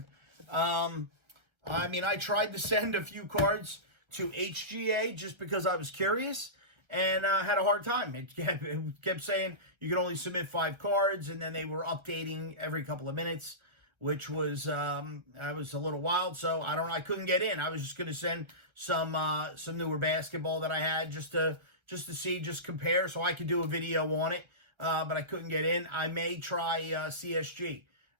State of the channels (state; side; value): late; left; 1.3 ms